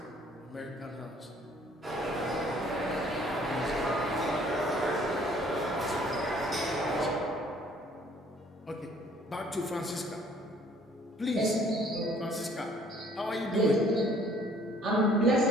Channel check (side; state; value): both; normal; correlation 0.58